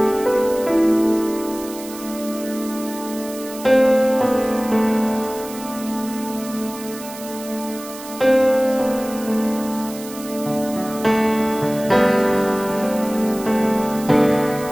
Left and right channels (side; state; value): right; noise; hiss, 15 dB below the sound